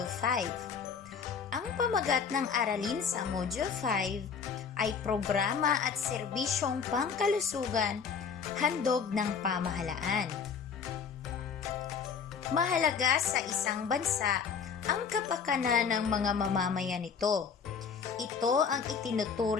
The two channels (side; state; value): right; quieter; 6.3 dB